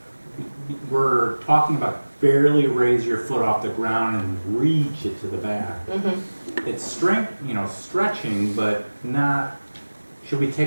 We're talking about barely raise your foot off the ground and reach it to the back. Mm-hmm. It's strength, stretching, but not. Should we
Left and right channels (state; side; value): inverted; both; correlation -1.00